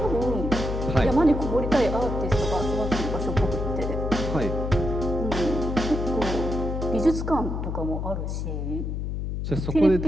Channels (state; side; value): noise; left; hum, 3 dB below the sound